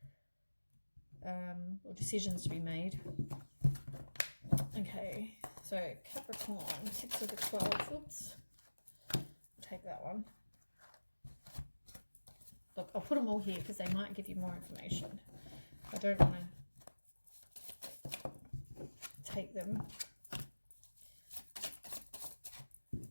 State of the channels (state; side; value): inverted; both; correlation -1.00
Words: Or decisions to be made. Okay, so Capricorn, 6 of the 12. Oops. I'll take that one. Look, I'll put them all here because they might give you more information. I don't want to take them.